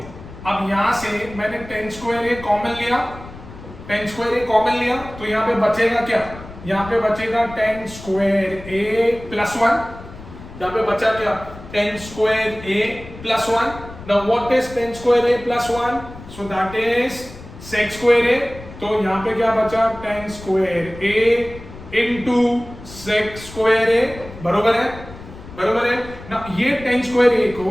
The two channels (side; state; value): left; noise; rumble, 16 dB below the sound